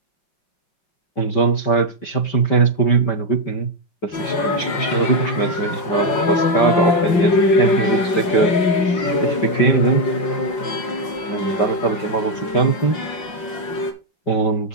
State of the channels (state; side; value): late; right; 5.7 ms